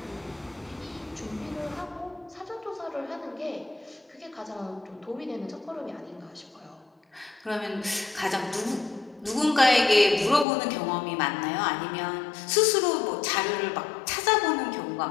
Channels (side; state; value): right; drops out; at 10.5 s